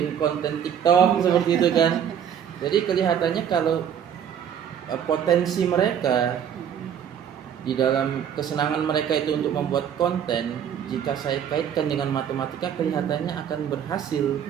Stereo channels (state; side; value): quieter; left; 8.8 dB